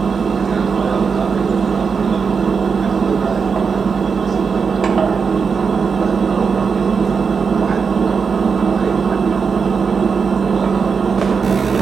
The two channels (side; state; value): left; quieter; 5.6 dB